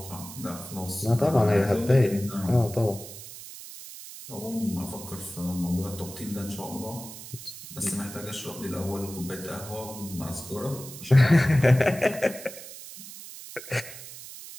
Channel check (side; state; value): right; noise; hiss, 13 dB below the sound